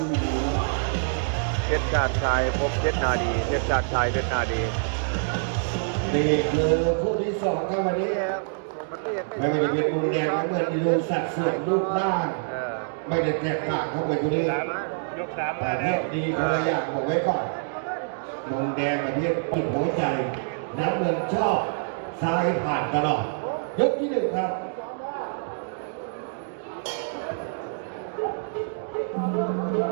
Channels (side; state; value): left; silent; digital silence